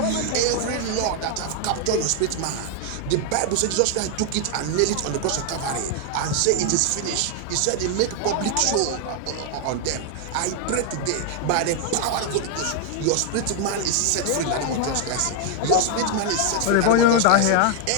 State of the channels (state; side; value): different; both; correlation 0.00